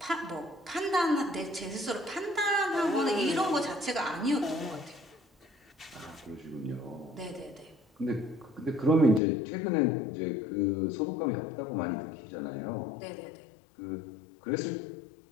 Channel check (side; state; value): right; drops out; at 9.2 s